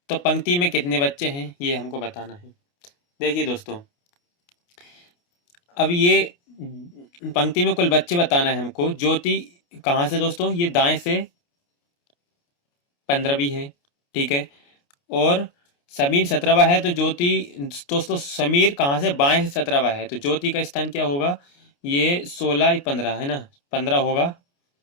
तो पंक्ति में कितने बच्चे हैं ये हमको बताना है। देखिए दोस्तों, अब ये पंक्ति में कुल बच्चे बताना है हमको। ज्योति कहाँ से दोस्तों? ये दाएं से 15वीं है। ठीक है, और समीर 17वां है, तो ज्योति दोस्तों समीर कहाँ से? बाएं से 17वां है, तो ज्योति का स्थान क्या होगा? ये 16 15 है ना, 15 होगा,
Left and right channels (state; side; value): late; right; 29 ms